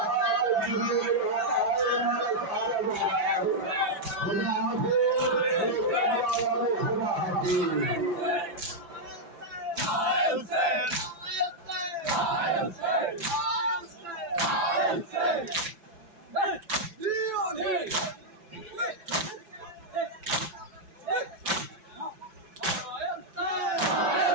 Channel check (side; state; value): left; late; 5.9 ms